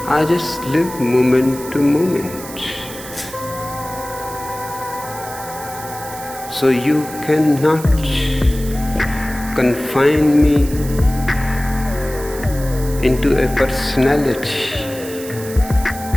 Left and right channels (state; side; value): noise; right; hiss, 13 dB below the sound